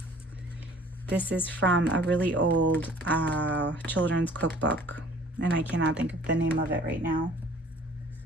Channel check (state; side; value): normal; both; correlation 0.52